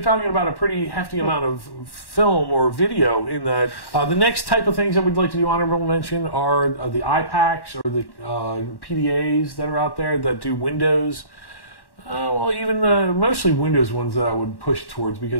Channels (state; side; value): late; right; 1.1 ms